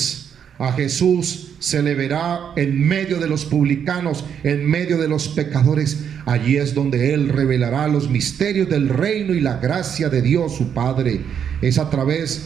A Jesús se le verá en medio de los publicanos, en medio de los pecadores. Allí es donde Él revelará los misterios del reino y la gracia de Dios su Padre. Es a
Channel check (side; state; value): left; quieter; 8.1 dB